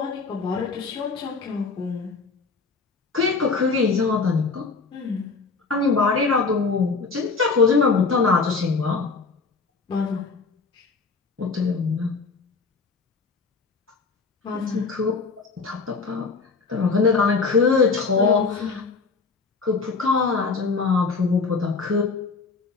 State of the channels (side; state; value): right; quieter; 4.5 dB